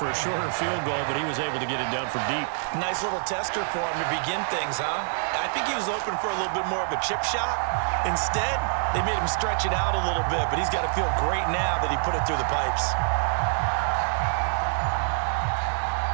a shorter field goal, but he was able to get it done from deep. Nice little tester for him to begin things, huh? I think he was open for a little bit more of a chip shot. Instead, they made him stretch it out a little bit, but he's got to feel great now that he put it through the pipes.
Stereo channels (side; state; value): left; silent; digital silence